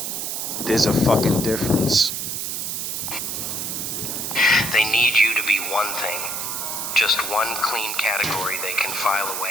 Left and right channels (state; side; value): noise; right; hiss, 3 dB below the sound